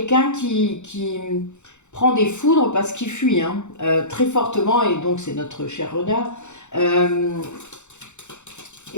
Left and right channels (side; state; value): right; late; 0.83 ms